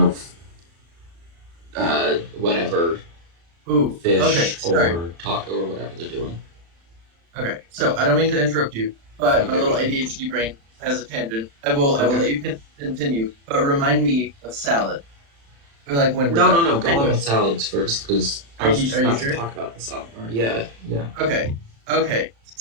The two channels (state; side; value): late; left; 36 ms